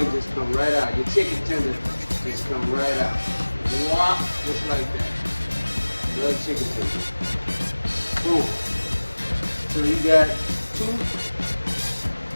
just come right out. Your chicken tender just come right out. Whop, just like that. Another chicken tender. Boom. So you got two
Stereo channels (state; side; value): inverted; both; correlation -1.00